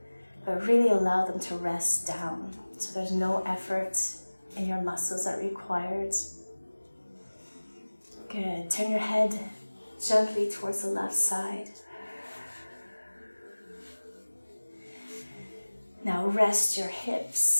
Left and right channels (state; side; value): inverted; both; correlation -1.00